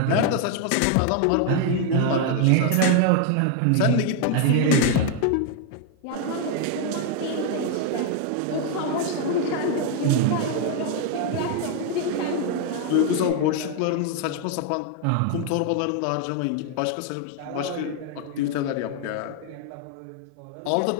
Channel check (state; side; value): different; both; correlation 0.00